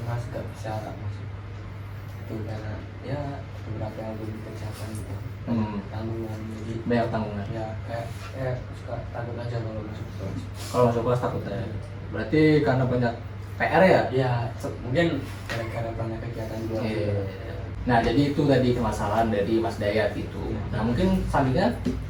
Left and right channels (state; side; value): identical; both; correlation 1.00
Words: nggak bisa tak masuk. Itu karena ya beberapa yang belum dikerjakan gitu. Tanggungan jadi Banyak tanggungan. ya kayak suka takut aja kalau masuk kelas. Kalau masuk kelas takut ya. Berarti karena banyak PR ya? Ya mungkin gara-gara banyak kegiatan di luar. Iya. Nah, jadi itu tadi permasalahan dari Mas Dayat itu. Nah, mungkin selanjutnya